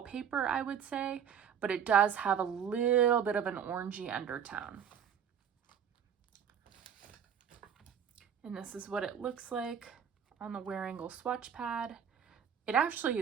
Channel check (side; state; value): left; quieter; 8.1 dB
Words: paper, I would say, but it does have a little bit of an orangey undertone. And this is what it looks like on the wearable swatch pad. It actually